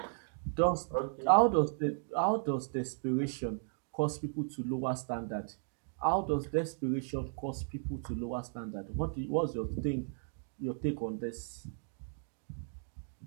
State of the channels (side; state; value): left; silent; 54 dB below the other